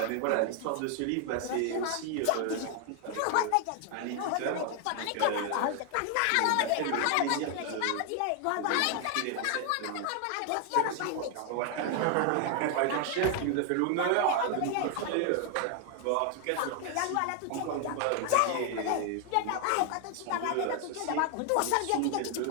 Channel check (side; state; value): both; different; correlation 0.00